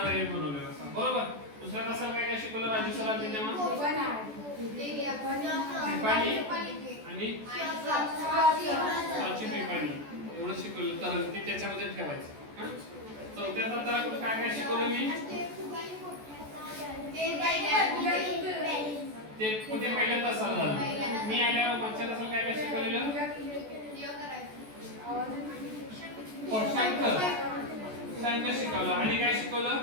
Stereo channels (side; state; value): left; late; 14 ms